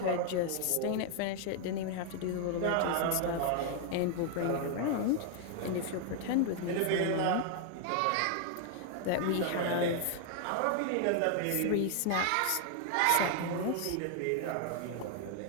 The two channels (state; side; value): different; both; correlation 0.00